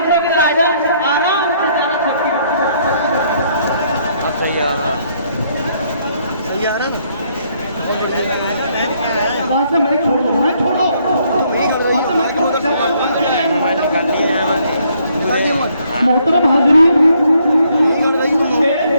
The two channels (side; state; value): both; inverted; correlation -0.69